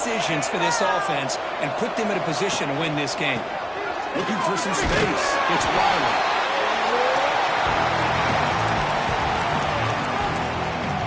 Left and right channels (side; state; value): both; identical; correlation 1.00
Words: for this offense and put them in a position to win this game. Looking for some space. It's Riley.